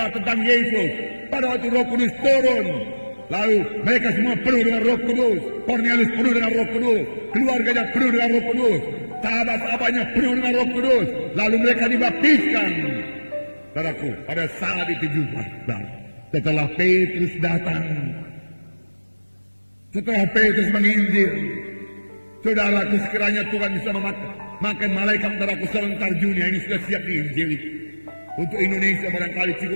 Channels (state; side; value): inverted; both; correlation -1.00